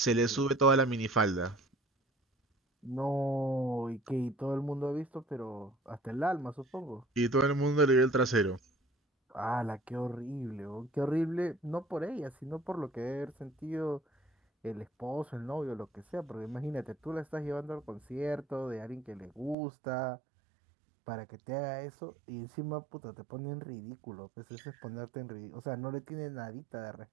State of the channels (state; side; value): drops out; left; at 19.6 s